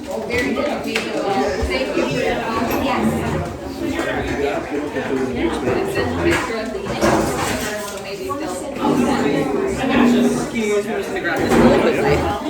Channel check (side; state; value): both; identical; correlation 1.00